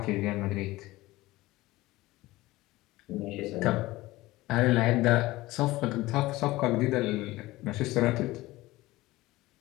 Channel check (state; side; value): quieter; right; 18.7 dB